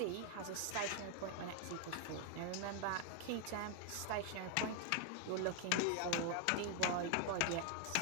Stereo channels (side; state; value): both; different; correlation 0.00